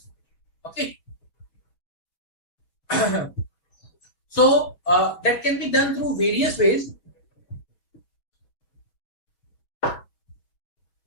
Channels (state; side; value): late; right; 6.1 ms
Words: Okay. So that can be done through various ways.